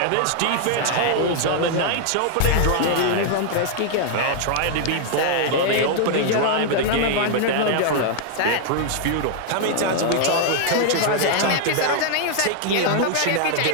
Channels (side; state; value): both; different; correlation -0.01